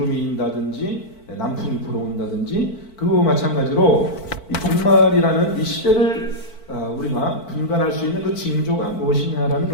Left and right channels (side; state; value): right; late; 4.5 ms